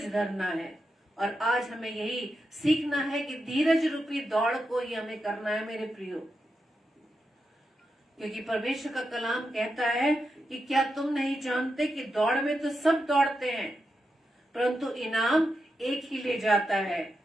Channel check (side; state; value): both; normal; correlation 0.87